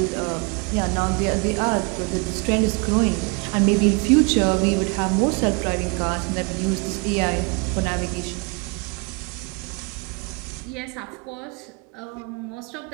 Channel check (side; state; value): left; quieter; 31.4 dB